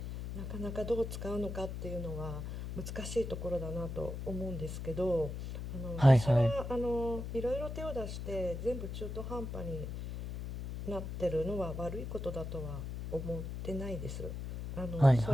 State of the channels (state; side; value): noise; left; hum, 6 dB below the sound